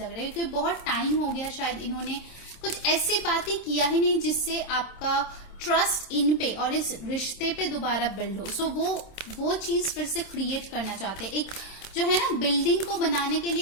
रहा है, क्योंकि बहुत टाइम हो गया शायद इन्होंने कुछ ऐसी बातें किया ही नहीं जिससे आपका ट्रस्ट इन पे और इस रिश्ते पे दोबारा बिल्ड हो। सो वो चीज फिर से क्रिएट करना चाहते हैं। एक जो है ना बिल्डिंग को बनाने के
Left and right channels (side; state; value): right; late; 27 ms